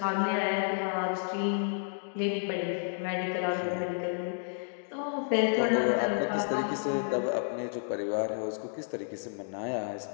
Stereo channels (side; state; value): right; silent; digital silence